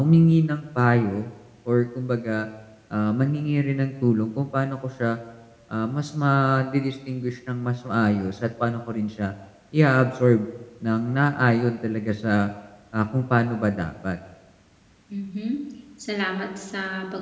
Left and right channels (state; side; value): identical; both; correlation 1.00